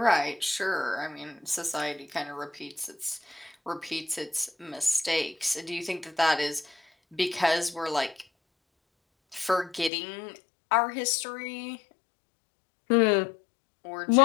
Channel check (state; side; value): drops out; right; at 9.9 s